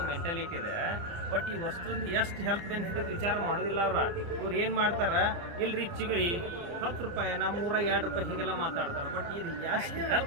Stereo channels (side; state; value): left; late; 29 ms